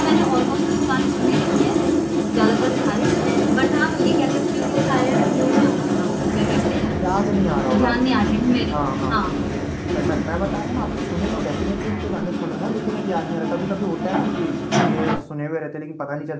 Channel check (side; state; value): both; identical; correlation 1.00